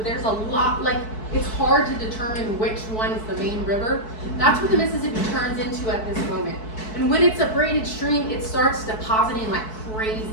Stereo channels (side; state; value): right; late; 4.6 ms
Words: there's a lot, like it's hard to determine which one is the main river, that's what the Mississippi turns into at this moment. And when it's a braided stream, it starts depositing like